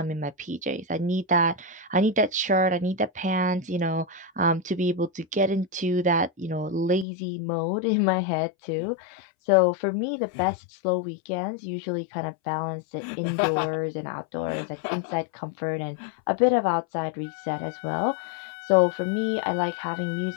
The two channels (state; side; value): drops out; right; at 7.1 s